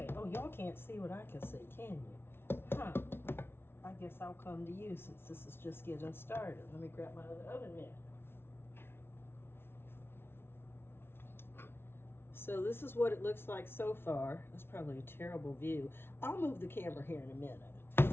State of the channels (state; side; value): late; right; 0.11 ms